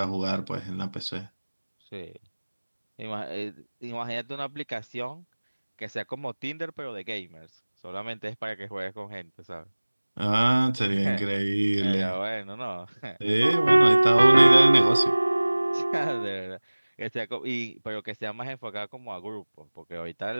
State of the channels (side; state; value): both; inverted; correlation -1.00